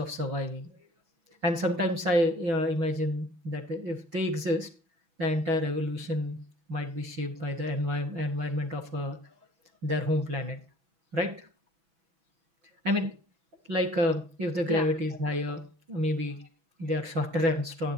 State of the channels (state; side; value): late; left; 6.1 ms